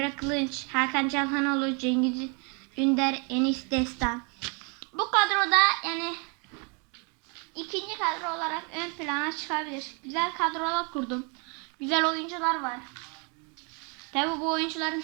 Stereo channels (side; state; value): left; quieter; 34.7 dB